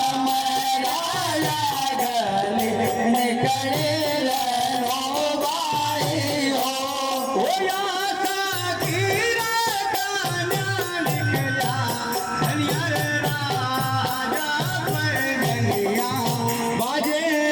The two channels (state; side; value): identical; both; correlation 1.00